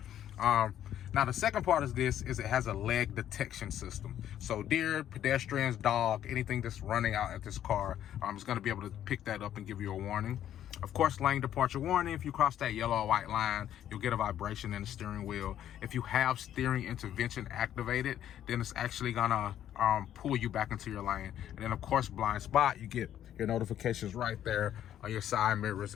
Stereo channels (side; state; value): right; quieter; 11.0 dB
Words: Now the second part of this is it has a leg detection system. So deer, pedestrians, dog, anything that's running out at this car, is going to be able to pick that up and give you a warning. Of course, lane departure warning. If you cross that yellow or white line, you'll get a vibration in the steering wheel. If you have steering intervention activated, then it's actually gonna pull you back into your lane. And then of course, blind spot, you get your notifications right there on your side